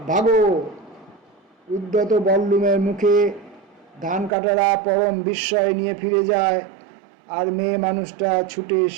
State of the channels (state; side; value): drops out; left; at 4.3 s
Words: ভাগো। উদ্যত বল্লুমের মুখে ধান কাটারা পরম বিস্ময় নিয়ে ফিরে যায়, আর মেয়ে মানুষটা ছুটে